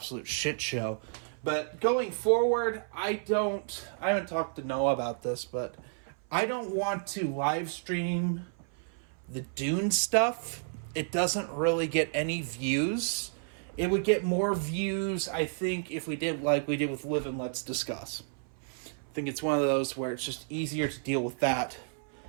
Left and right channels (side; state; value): left; silent; 57 dB below the other